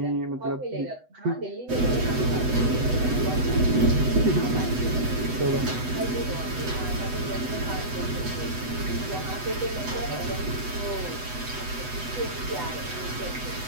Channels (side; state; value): left; late; 8.0 ms